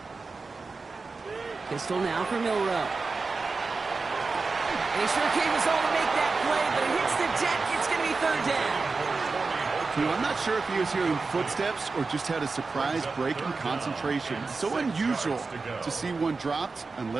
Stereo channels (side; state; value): left; quieter; 4.1 dB